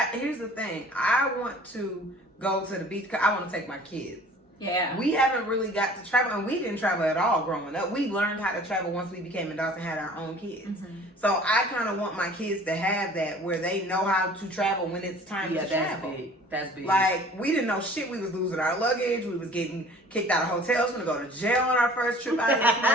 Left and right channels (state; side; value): normal; both; correlation 0.49